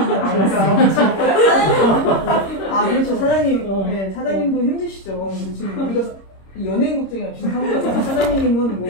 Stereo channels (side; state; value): right; late; 26 ms